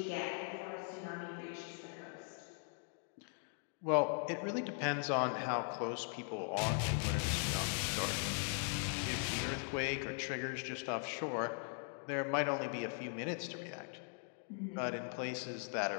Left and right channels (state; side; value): silent; right; 51 dB below the other